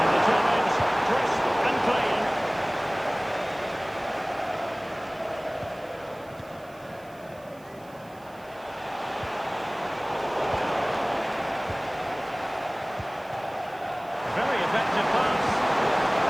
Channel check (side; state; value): right; noise; hiss, 27 dB below the sound